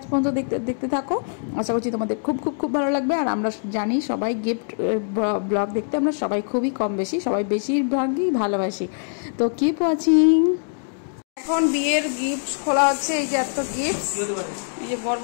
পর্যন্ত দেখতে থাকো। আশা করছি তোমাদের খুব ভালো লাগবে। আর আমরা জানি সবাই গিফট ব্লগ দেখতে আমরা সবাই খুবই কম বেশি, সবাই বেশিরভাগই ভালোবাসি। তো কিপ ওয়াচিং। এখন বিয়ের গিফট খোলা হচ্ছে। এই যে এত গিফট, এই যে বড়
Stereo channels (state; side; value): silent; right; digital silence